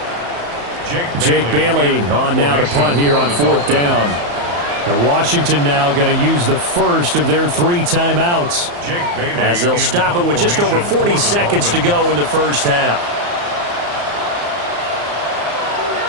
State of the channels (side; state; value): left; late; 34 ms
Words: Jake Bailey on now to punt here on 4th down. And Washington now going to use the first of their 3 timeouts. As they'll stop it with just over 40 seconds to go in the first half.